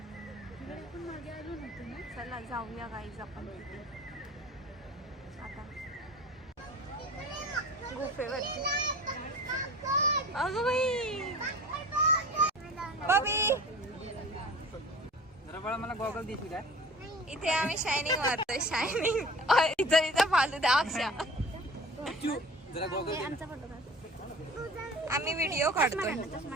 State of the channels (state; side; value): normal; both; correlation 0.41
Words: चला जाऊया गाईज आपण तिथे आता गुफेवरती. अगं बाई, बबी मला गॉगल देशील काय. इथे आम्ही शायनिंग मारतोय. शायनिंग इथं फालतू अक्षा. आम्ही व्हिडिओ काढतोय.